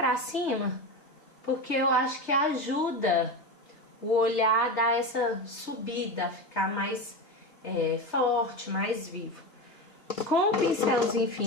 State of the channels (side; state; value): right; late; 3.3 ms